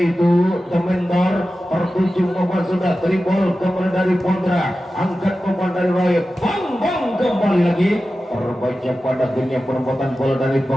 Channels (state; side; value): normal; both; correlation 0.94